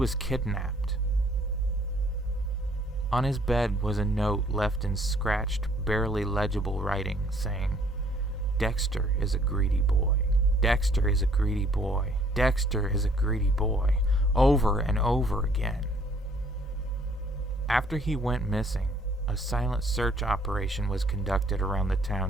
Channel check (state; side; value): normal; both; correlation 0.61